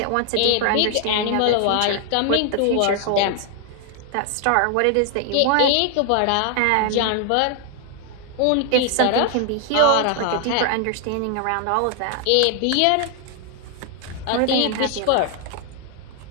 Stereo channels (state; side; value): different; both; correlation 0.00